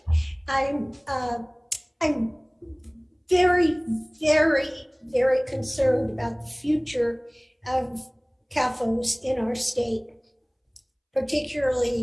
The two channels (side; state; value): both; identical; correlation 1.00